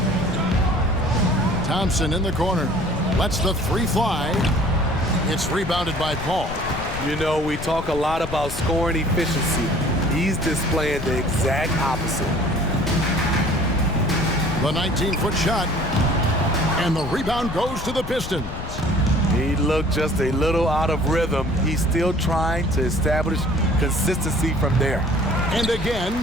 Thompson in the corner. Lets the 3 fly. It's rebounded by Paul. You know, we talk a lot about scoring efficiency. He's displaying the exact opposite. The 19-foot shot. And the rebound goes to the Pistons. He looked just a little out of rhythm. He's still trying to establish consistency from there. And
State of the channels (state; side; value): noise; left; rumble, 9 dB below the sound